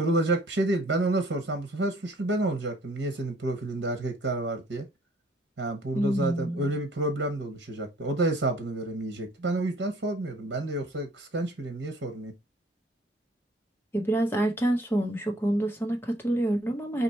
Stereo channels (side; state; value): both; normal; correlation 0.58